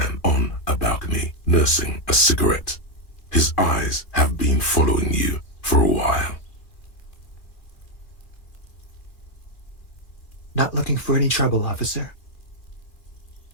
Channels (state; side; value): late; right; 2.3 ms